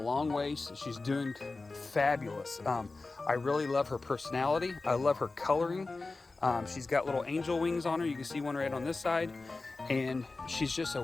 way. She's doing fabulous. I really love her personality. I love her coloring. She's got little angel wings on her. You can see one right on this side. And she's just a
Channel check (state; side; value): quieter; right; 3.6 dB